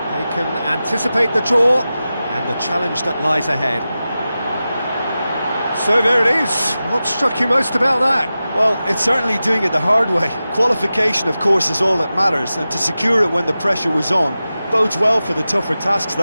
They can anticipate the draw and the challenge that lies ahead. So there it is. What struck you most about that? Well, it's certainly doing it the hard way. Qualification, of course, is all that matters, and to secure it when the pressure was on bodes well for the tougher tasks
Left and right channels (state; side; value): inverted; both; correlation -0.94